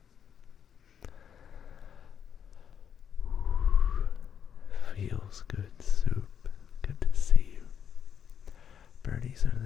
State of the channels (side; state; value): right; quieter; 8.3 dB